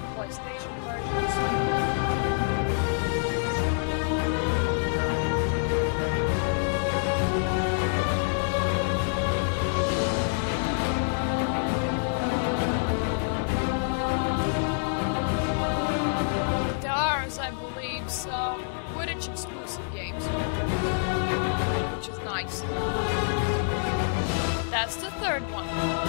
PlayStation versions. There are, I believe, some Quidditch exclusive games, which is nice. That's the third one.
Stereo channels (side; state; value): right; silent; digital silence